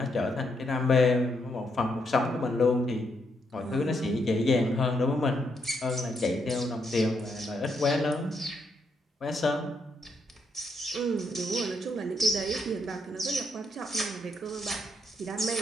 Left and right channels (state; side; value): normal; both; correlation 0.77